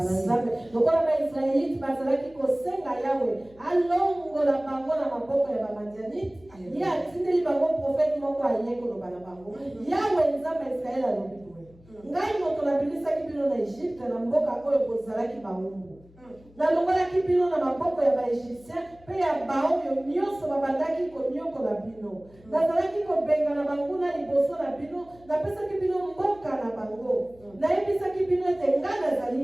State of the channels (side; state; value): left; noise; hum, 26 dB below the sound